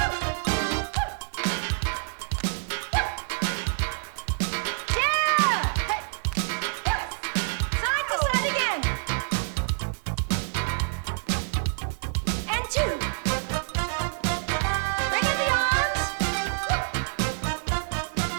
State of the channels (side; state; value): left; silent; digital silence